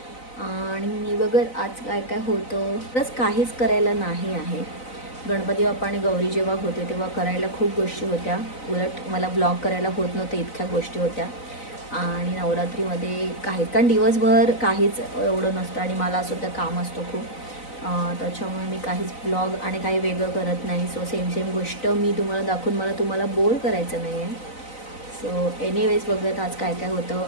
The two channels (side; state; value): right; late; 4.0 ms